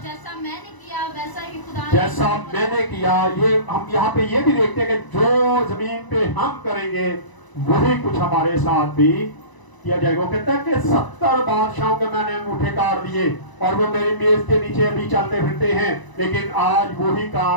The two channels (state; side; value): late; right; 1.0 ms